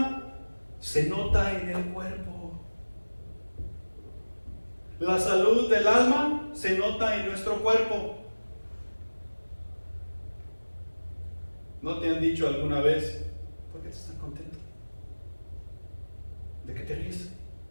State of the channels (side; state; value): both; inverted; correlation -1.00